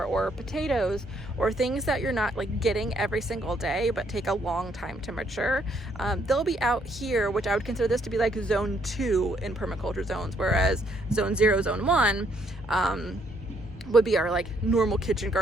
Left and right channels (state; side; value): normal; both; correlation 0.70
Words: or potatoes, or things that you're not like getting every single day but take a long time to mature, they'll be out here, which I would consider this to be like zone 2 in permaculture zones, whereas zone 0, zone 1 would be our like normal kitchen